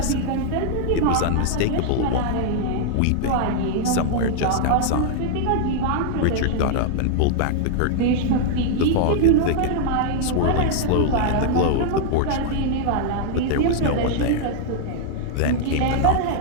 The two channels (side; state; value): both; different; correlation -0.01